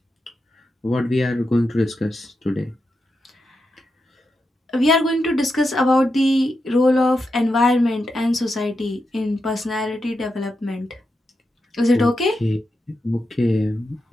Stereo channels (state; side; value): normal; both; correlation 0.87